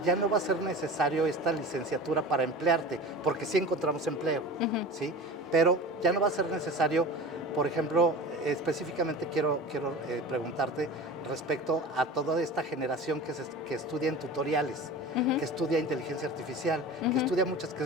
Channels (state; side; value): normal; both; correlation 0.34